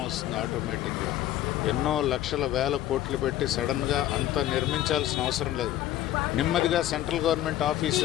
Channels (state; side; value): quieter; right; 13.1 dB